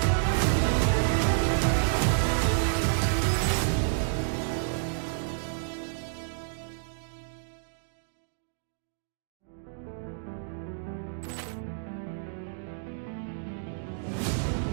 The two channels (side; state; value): left; silent; digital silence